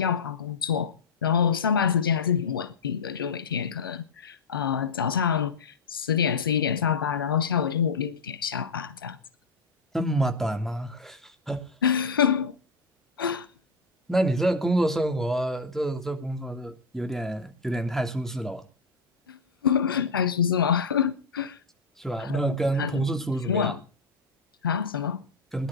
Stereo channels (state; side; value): quieter; right; 4.1 dB